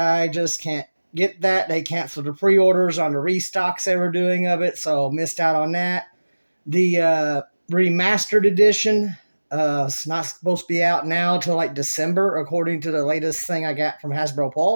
just can't get that. They canceled the pre-orders on the restocks they were doing of it, so missed out on that. The remastered edition it's not supposed to be out now till like December, according to the latest thing I got from Hasbro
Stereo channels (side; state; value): both; inverted; correlation -1.00